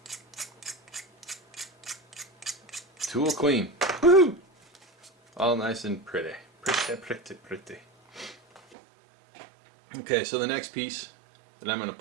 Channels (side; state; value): left; drops out; at 8.8 s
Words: tool clean. Woohoo! All nice and pretty. Pretty. Okay, so the next piece that I'm going to